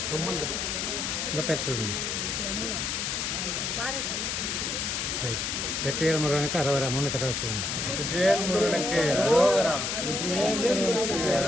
உங்க பேர் சொல்லுங்க. யமுனா, பாரத். வெற்றிவேல் முருகனுக்கு அரோகரா. 3 தடவை சொல்லுங்க. வெற்றிவேல் முருகனுக்கு அரோகரா, வெற்றிவேல் முருகனுக்கு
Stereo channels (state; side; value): noise; left; hiss, 1 dB below the sound